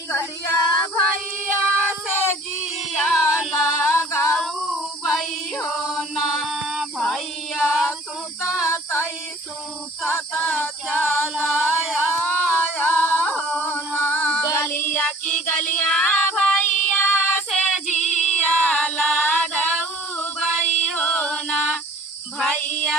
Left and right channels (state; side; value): normal; both; correlation 0.49